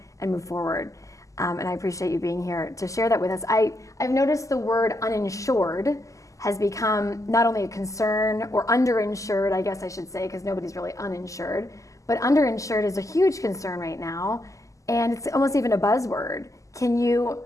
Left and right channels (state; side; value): late; right; 0.16 ms